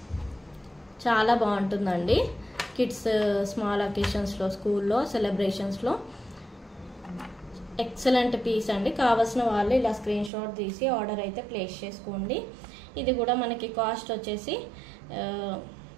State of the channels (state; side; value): drops out; left; at 10.3 s